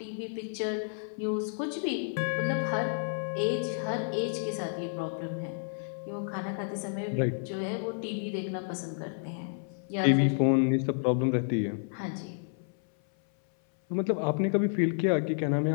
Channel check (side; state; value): right; silent; 57 dB below the other